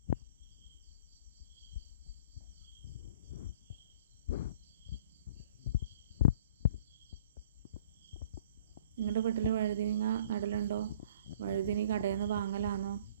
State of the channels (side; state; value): both; inverted; correlation -0.51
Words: നിങ്ങളുടെ വീട്ടിൽ വഴുതനങ്ങ നടലുണ്ടോ? വഴുതന കടയിൽ നിന്ന് വാങ്ങലാണോ?